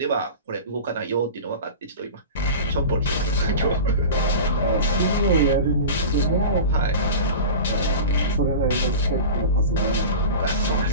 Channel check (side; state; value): both; inverted; correlation -0.32